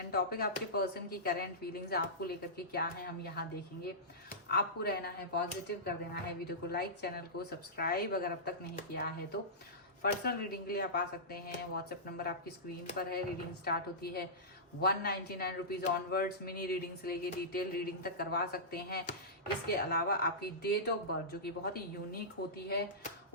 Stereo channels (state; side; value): normal; both; correlation -0.16